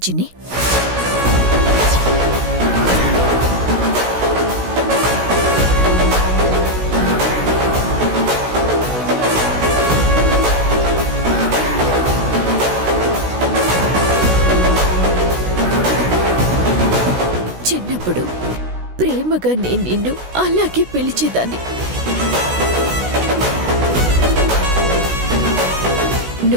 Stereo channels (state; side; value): late; left; 16 ms